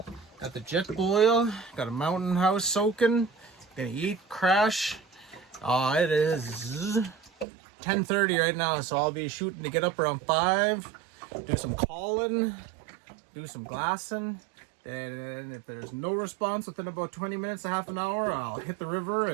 Got the jet boil, got a mountain house soaking. Gonna eat, crash. It is 10:30 right now, so I'll be shooting to get up around 5. Do some calling, do some glassing. And if there's no response within about 20 minutes, a half an hour, I'll hit the river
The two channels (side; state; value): left; drops out; at 7.5 s